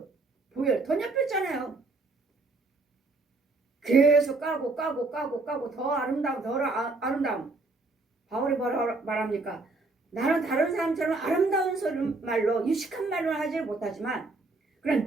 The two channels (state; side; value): quieter; left; 3.4 dB